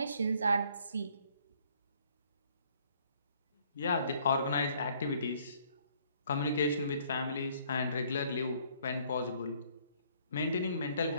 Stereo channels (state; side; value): inverted; both; correlation -0.63